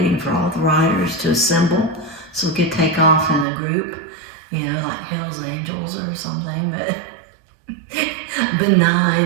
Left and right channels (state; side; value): drops out; left; at 3.5 s